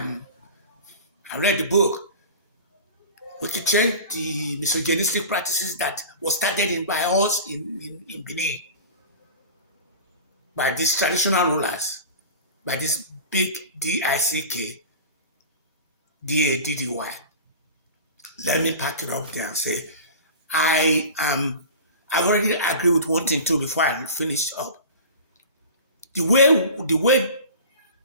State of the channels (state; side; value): inverted; both; correlation -0.35